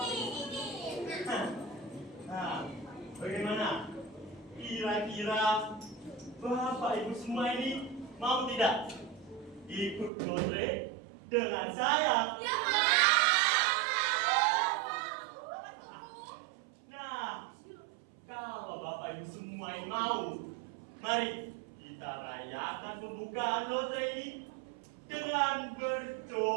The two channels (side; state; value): left; drops out; at 10.1 s